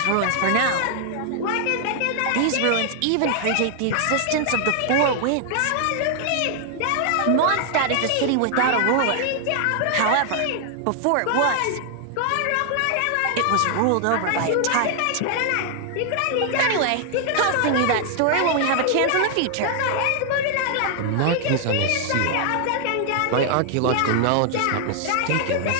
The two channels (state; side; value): different; both; correlation 0.00